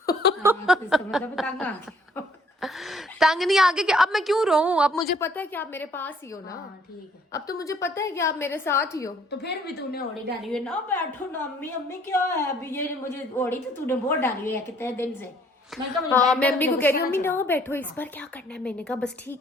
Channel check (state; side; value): normal; both; correlation 0.61